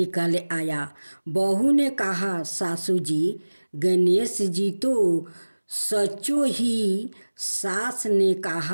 आया। बहू ने कहा, सासू जी गणेश जी तो सचो ही। सास ने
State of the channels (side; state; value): both; inverted; correlation -1.00